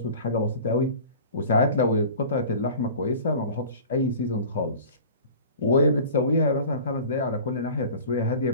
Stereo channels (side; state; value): both; inverted; correlation -0.41